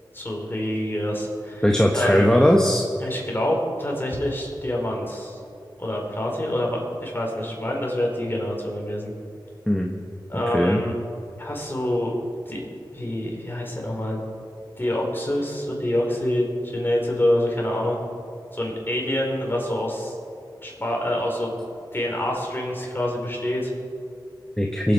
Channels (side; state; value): both; normal; correlation 0.90